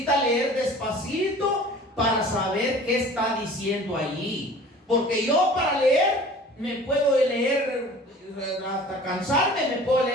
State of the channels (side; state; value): both; normal; correlation 0.45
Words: leer despacito para saber qué está diciendo allí. Porque yo para leer me puedo leer hasta cansarme, me puedo